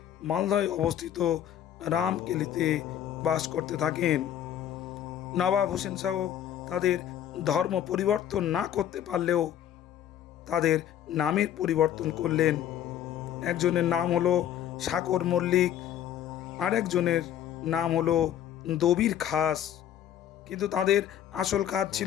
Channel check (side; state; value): right; quieter; 10.6 dB